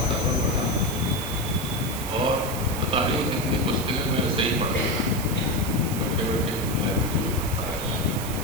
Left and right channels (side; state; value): right; noise; hiss, 9 dB below the sound